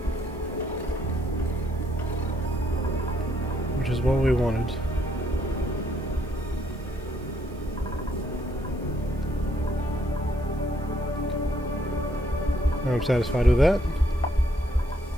Which is what we wanted. I'm satisfied with that.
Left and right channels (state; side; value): noise; right; hiss, 29 dB below the sound